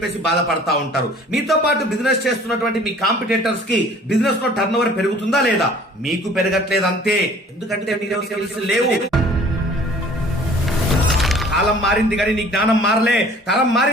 బాధపడతా ఉంటారు. మీతో పాటు బిజినెస్ చేస్తున్నటువంటి మీ కాంపిటేటర్స్ కి బిజినెస్ లో టర్న్ ఓవర్ పెరుగుతుందా లేదా? మీకు పెరగట్లేదంతే. ఎందుకంటే మీలో స్కిల్స్ లేవు. కాలం మారింది కానీ నీ జ్ఞానం మారలే, తరం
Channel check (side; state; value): both; normal; correlation 0.51